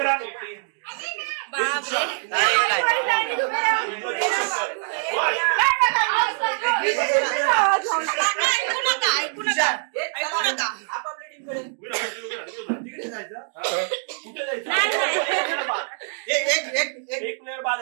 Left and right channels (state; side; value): silent; left; 56 dB below the other